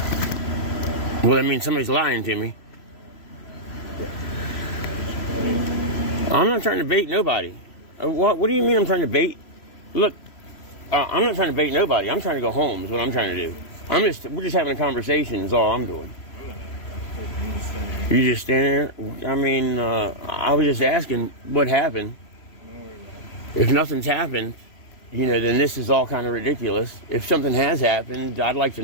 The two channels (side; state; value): right; late; 3.0 ms